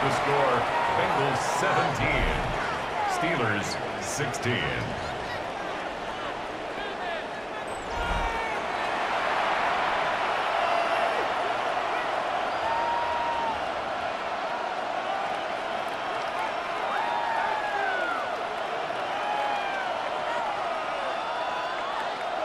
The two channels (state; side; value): identical; both; correlation 1.00